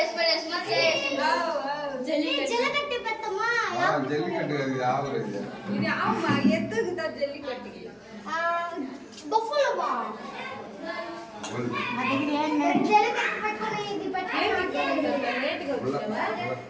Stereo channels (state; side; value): identical; both; correlation 1.00